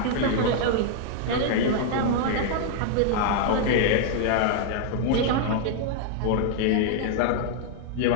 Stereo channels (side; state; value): both; different; correlation 0.00